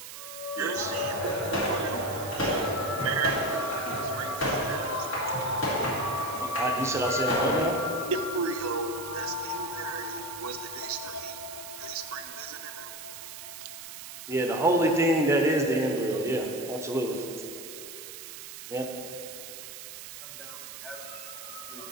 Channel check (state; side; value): noise; right; hiss, 11 dB below the sound